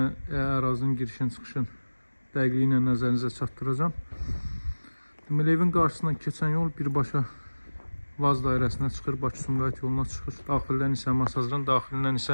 girişin çıxışın dəqiqliyi ilə nəzərinizə çatdıracağım. Deməli, evin qarşısından keçən yol birbaşa Vaz dairəsinə çıxır, Bakı-Sumqayıt yoluna çıxır. Daxildən isə Masazırın daxilindən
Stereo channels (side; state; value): both; inverted; correlation -1.00